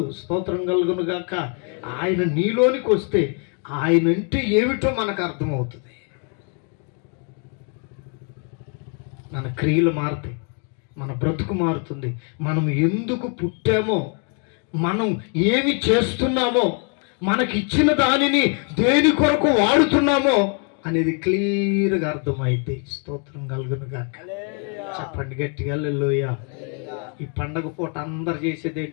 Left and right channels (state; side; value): quieter; right; 39.1 dB